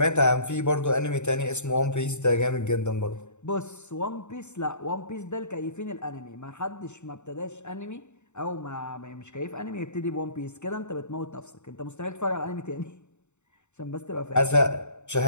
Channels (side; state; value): right; late; 0.83 ms